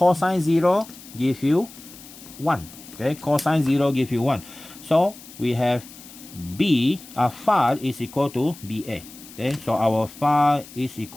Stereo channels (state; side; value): noise; left; hiss, 18 dB below the sound